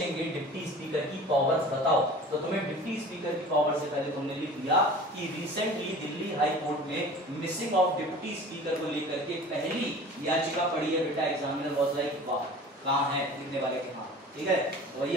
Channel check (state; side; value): normal; both; correlation 0.41